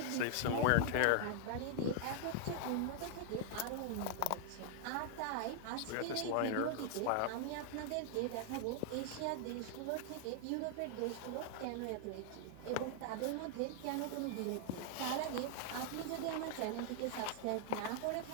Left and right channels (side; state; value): both; different; correlation 0.00